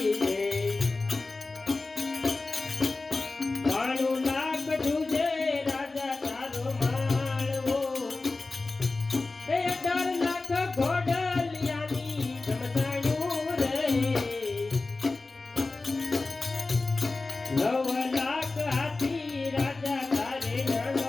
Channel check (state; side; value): quieter; right; 3.5 dB